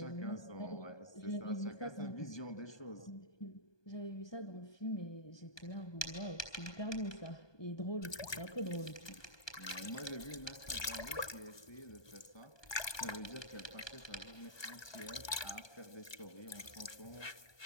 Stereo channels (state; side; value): late; right; 1.2 ms